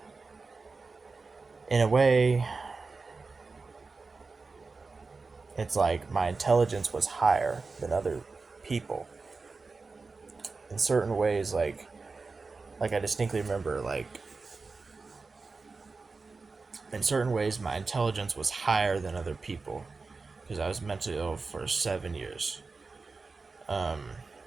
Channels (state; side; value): quieter; left; 4.1 dB